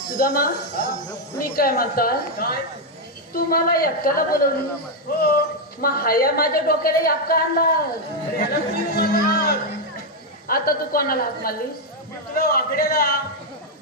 सुदामा, मी काय म्हणताय, तू मला एकट्याला बोलवली. मग हाया माझ्या डोक्याला याप का आणला. आता तू कोणाला हात मारलीस. वाकड्याला.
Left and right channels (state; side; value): normal; both; correlation 0.01